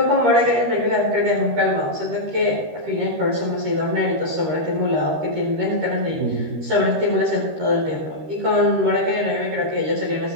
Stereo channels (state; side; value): late; left; 13 ms